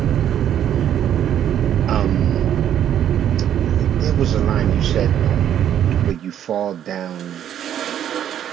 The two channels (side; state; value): left; quieter; 10.2 dB